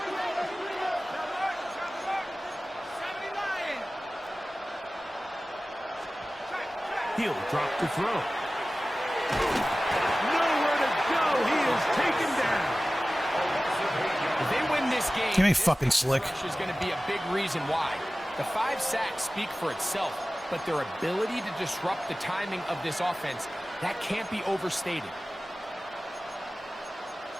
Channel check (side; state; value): both; normal; correlation 0.97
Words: He'll drop to throw. Nowhere to go. He is taken down. If they win this game, Give me fucking slick. this is going to be a big reason why. The 5 sacks speak for itself, but their ability to disrupt the timing of this offense, that can't be overstated.